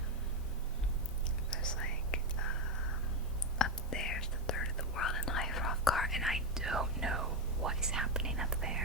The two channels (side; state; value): both; normal; correlation 0.09